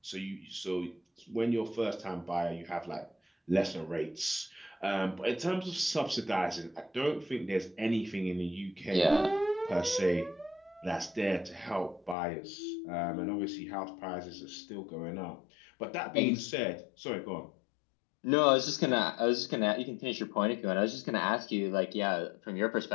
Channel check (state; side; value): drops out; right; at 12.2 s